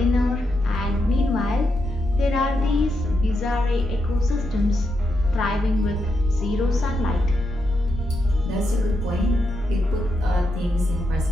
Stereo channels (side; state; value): both; normal; correlation 0.84